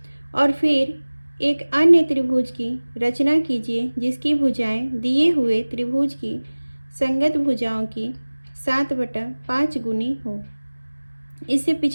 और फिर एक अन्य त्रिभुज की रचना कीजिए जिसकी भुजाएं दिए हुए त्रिभुज की संगत भुजाओं की 7/5 गुनी हो। इससे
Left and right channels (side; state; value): both; inverted; correlation -1.00